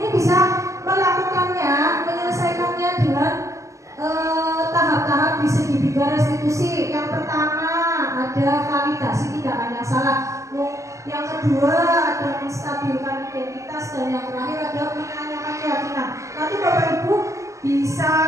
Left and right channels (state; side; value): late; left; 0.15 ms